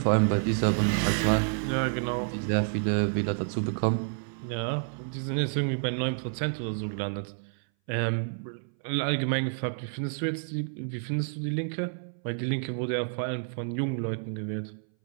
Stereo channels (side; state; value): left; silent; 58 dB below the other